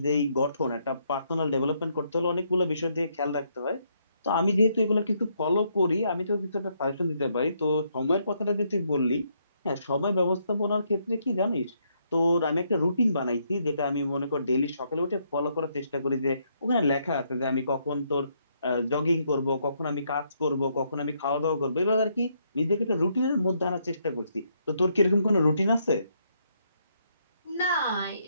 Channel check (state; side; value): inverted; both; correlation -0.74